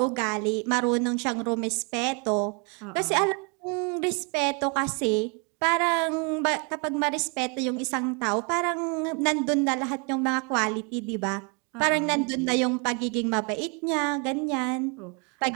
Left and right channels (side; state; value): left; quieter; 34.8 dB